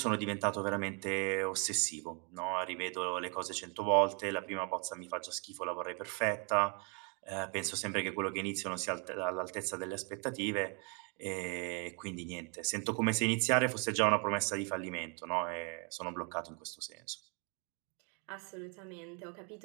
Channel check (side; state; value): left; quieter; 36.0 dB